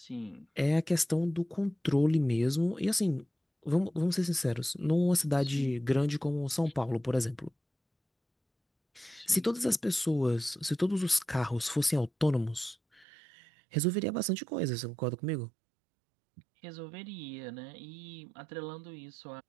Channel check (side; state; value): left; drops out; at 13.1 s